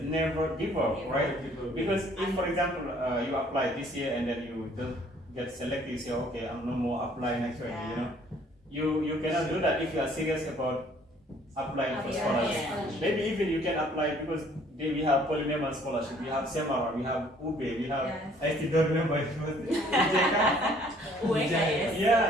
never give up, right? Because if, for example, you apply this year and then you don't get selected, you say, okay, I'm no more applying next year. You know, you cannot do that if you are serious about applying for scholarship. Maybe even you can apply because we have Polinema scholarship, we have Semarang, we have Ube, we have, I still don't remember it was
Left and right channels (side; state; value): both; normal; correlation 0.59